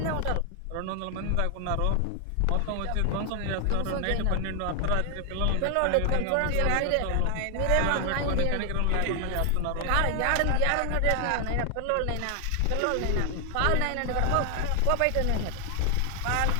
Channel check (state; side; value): different; both; correlation 0.00